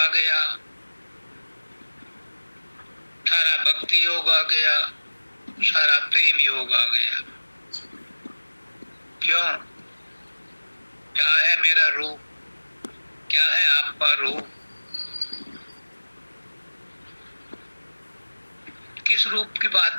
गया, सारा भक्ति योग आ गया, सारा प्रेम योग आ गया। क्यों? क्या है मेरा रूप? क्या है आपका रूप? किस रूप की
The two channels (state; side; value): inverted; both; correlation -1.00